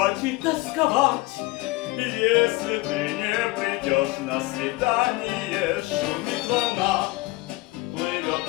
и тосковать, если ты не придешь на свидание. Шумит волна, плывет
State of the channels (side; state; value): right; quieter; 21.1 dB